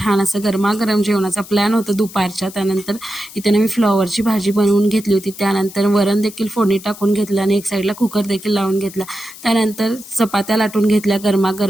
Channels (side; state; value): left; noise; hiss, 17 dB below the sound